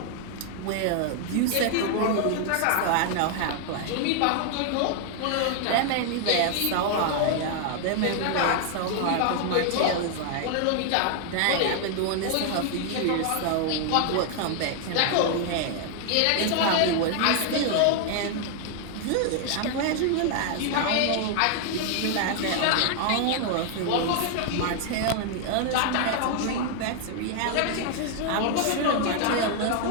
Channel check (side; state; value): both; different; correlation 0.00